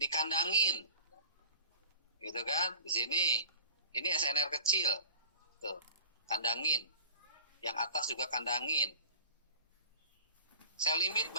Gitu kan? Di sini ini SNR kecil. Tuh, kandangin. Yang atas juga kandangin. Sell limit,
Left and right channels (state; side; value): inverted; both; correlation -0.43